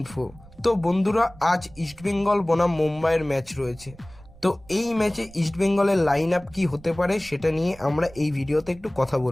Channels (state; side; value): noise; right; rumble, 22 dB below the sound